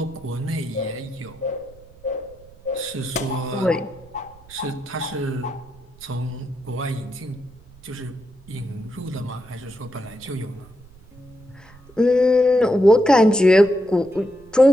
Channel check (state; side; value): noise; right; rumble, 24 dB below the sound